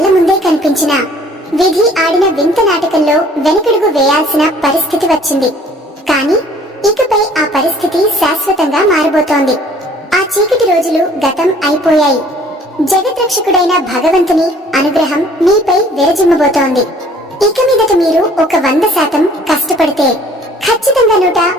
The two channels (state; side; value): normal; both; correlation 0.55